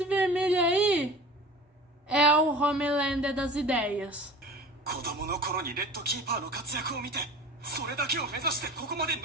vermelho aí é o Homelander das ideias.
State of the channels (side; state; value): both; normal; correlation 0.39